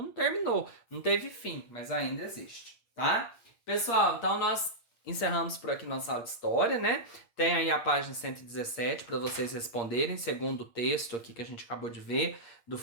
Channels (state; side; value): late; right; 8.6 ms